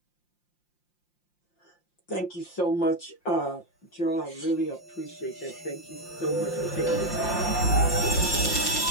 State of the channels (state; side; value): late; right; 5.7 ms